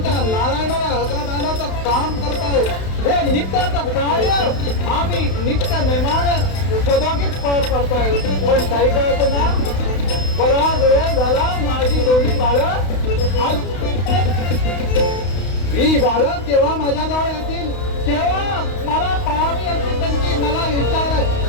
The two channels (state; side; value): late; right; 32 ms